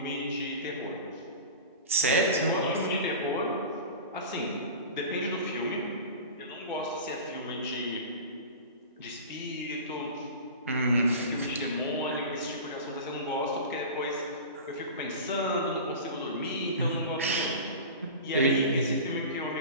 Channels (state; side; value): inverted; both; correlation -0.32